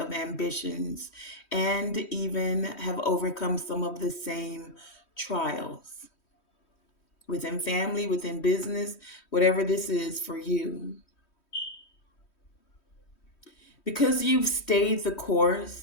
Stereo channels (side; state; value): right; late; 3.1 ms